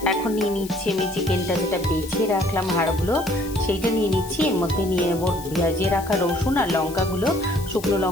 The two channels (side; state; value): left; noise; hiss, 16 dB below the sound